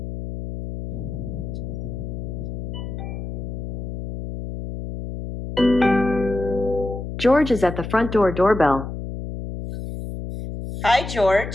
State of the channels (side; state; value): left; noise; hum, 7 dB below the sound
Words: George is at the front door doorbell. Hi,